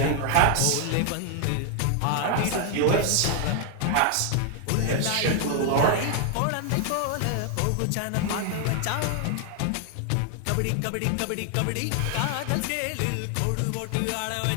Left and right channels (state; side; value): different; both; correlation 0.00